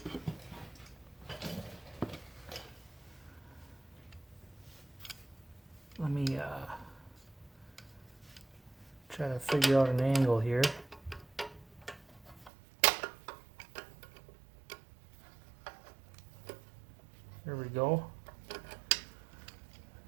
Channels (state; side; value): drops out; left; at 12.5 s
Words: let me try to figure out an angle here. There we go.